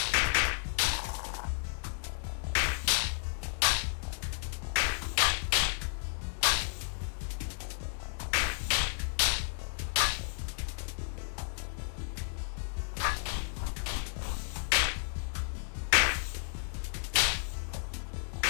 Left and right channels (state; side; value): silent; right; digital silence